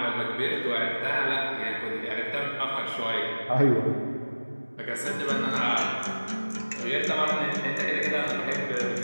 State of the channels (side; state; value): both; inverted; correlation -1.00